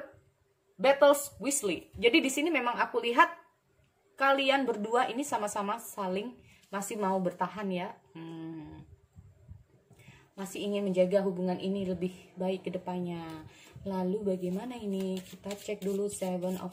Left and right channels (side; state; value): both; identical; correlation 1.00